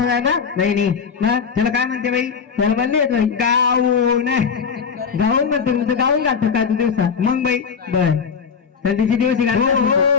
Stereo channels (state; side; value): quieter; right; 6.2 dB